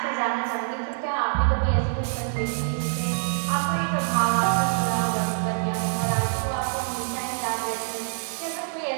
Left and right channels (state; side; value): silent; left; 59 dB below the other